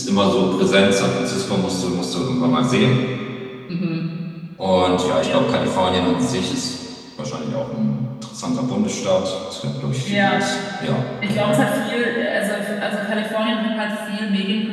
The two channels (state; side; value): identical; both; correlation 1.00